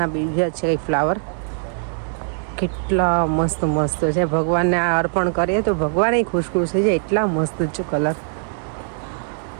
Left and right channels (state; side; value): silent; left; digital silence